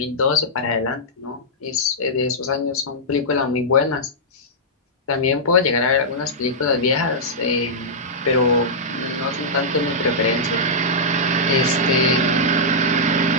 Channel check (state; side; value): normal; both; correlation -0.10